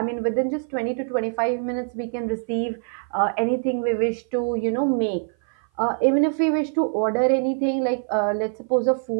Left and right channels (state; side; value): silent; left; 56 dB below the other